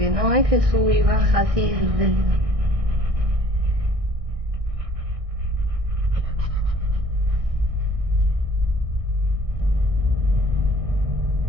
no es que sube y baja así.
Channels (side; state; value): left; late; 1.6 ms